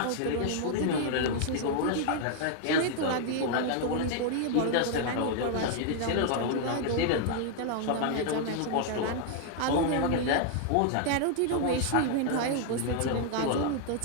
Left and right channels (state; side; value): different; both; correlation 0.00